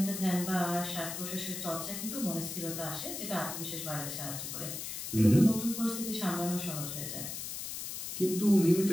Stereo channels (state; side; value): noise; left; hiss, 6 dB below the sound